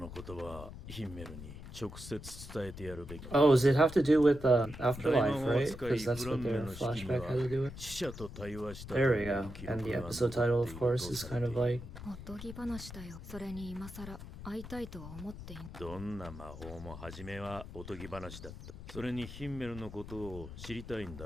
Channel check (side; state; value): left; noise; rumble, 12 dB below the sound